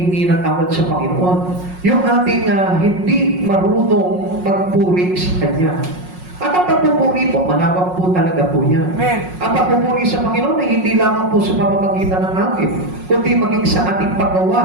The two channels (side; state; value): left; late; 5.5 ms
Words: ng tawad sa Panginoon? Yung ating hindi marunong magpuri sa Kanya. At ang pagpupuri po, malawak po talaga po yan. Amen. Ang pagpupuri sa Panginoon ay hindi lamang po sa pamamagitan ng langit, kundi maging sa ating